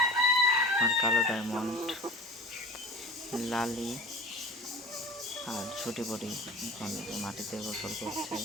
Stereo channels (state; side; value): normal; both; correlation 0.38